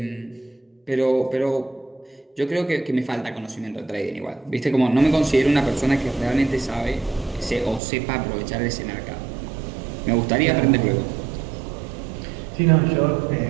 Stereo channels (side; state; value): left; drops out; at 7.8 s